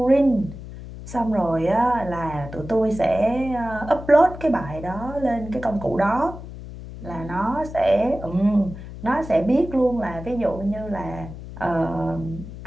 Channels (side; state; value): left; noise; hum, 12 dB below the sound